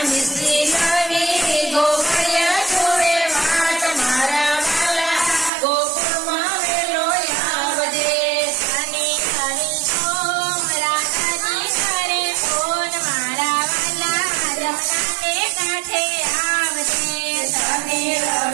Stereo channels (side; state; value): left; drops out; at 5.5 s